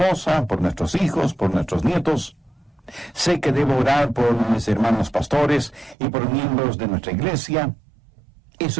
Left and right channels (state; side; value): drops out; left; at 6.0 s